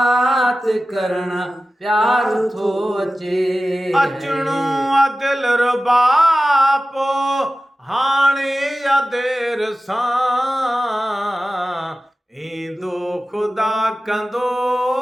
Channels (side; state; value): both; normal; correlation 0.95